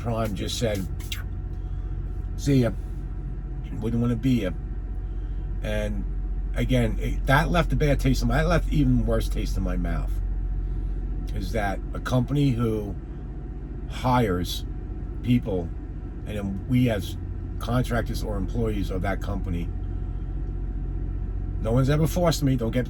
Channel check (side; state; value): both; identical; correlation 1.00